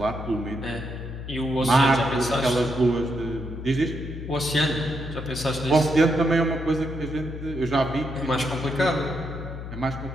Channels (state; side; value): noise; left; hum, 9 dB below the sound